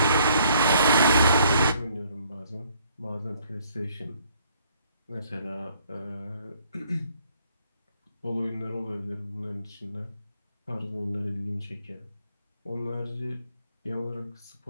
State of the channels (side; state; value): both; inverted; correlation -0.64